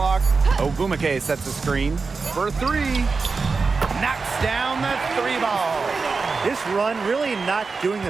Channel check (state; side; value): quieter; left; 4.5 dB